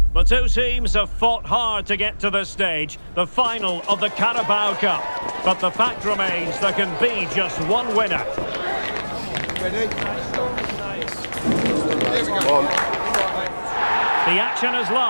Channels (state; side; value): inverted; both; correlation -1.00